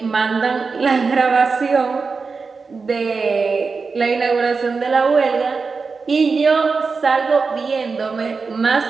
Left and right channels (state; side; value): quieter; left; 4.7 dB